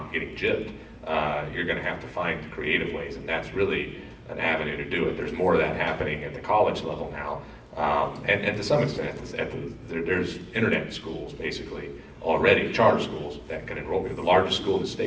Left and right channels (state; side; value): identical; both; correlation 1.00